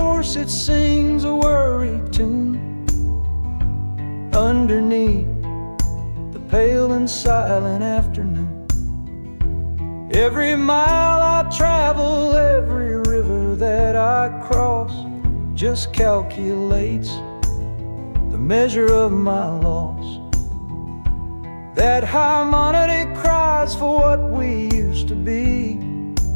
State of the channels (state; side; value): inverted; both; correlation -1.00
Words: it sings a worry tune underneath the pale and silent afternoon. Every mile I travel, every river that I cross, just calculates the measure of my loss. That harmonic cries for what we used to be,